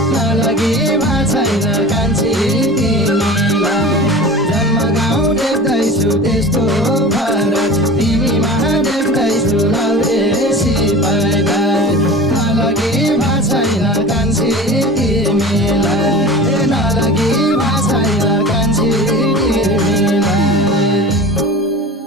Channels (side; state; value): both; normal; correlation 0.36